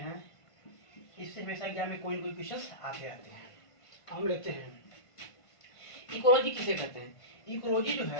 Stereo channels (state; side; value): late; right; 1.5 ms